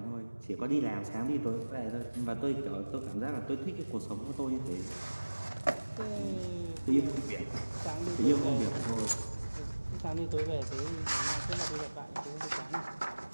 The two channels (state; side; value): inverted; both; correlation -1.00